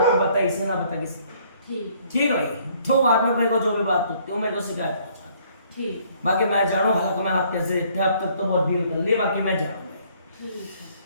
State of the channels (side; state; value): both; inverted; correlation -0.62